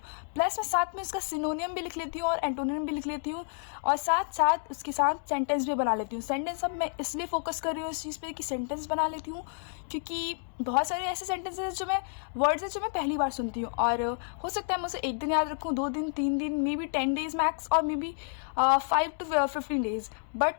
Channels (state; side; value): silent; right; digital silence